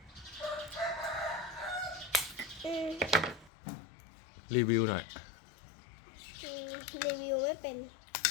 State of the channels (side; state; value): right; drops out; at 3.5 s